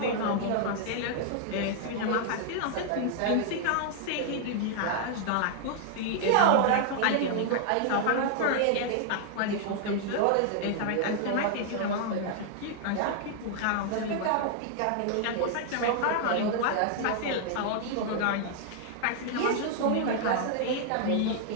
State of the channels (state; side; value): different; both; correlation 0.00